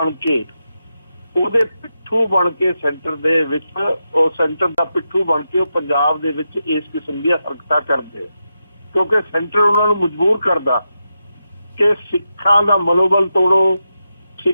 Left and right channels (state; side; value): inverted; both; correlation -0.87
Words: ਕੇ, ਉਹਦੇ ਪਿੱਠੂ ਬਣ ਕੇ ਸੈਂਟਰ ਦੇ ਵਿੱਚ, ਉਹ ਸੈਂਟਰ ਦਾ ਪਿੱਠੂ ਬਣ ਕੇ ਉਹ ਪੰਜਾਬ ਦੇ ਵਿੱਚ ਇਸ ਕਿਸਮ ਦੀਆਂ ਹਰਕਤਾਂ ਕਰਦੇ, ਕਿਉਂਕਿ ਸੈਂਟਰ ਉਹਨਾਂ ਨੂੰ ਮਜਬੂਰ ਕਰਦਾ ਕਿ ਸਿੱਖਾਂ ਦਾ ਮਨੋਬਲ ਤੋੜੋ,